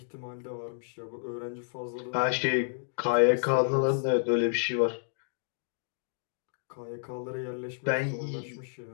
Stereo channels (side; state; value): right; silent; digital silence